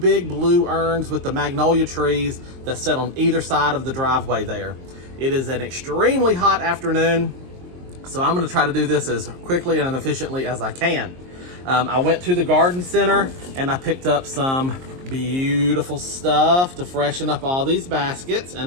blue urns with the magnolia trees that sit on either side of the driveway there. It is an extremely hot afternoon, so I'm going to try to do this as quickly and efficiently as I can. I went to the garden center and I picked up some beautiful stuff to freshen up all these baskets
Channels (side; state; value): left; late; 23 ms